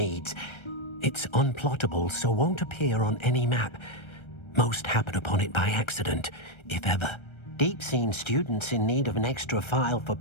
It's unplottable, so won't appear on any map. Most happen upon it by accident, if ever. Deke's seen students in need of an extra file for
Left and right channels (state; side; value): late; right; 1.3 ms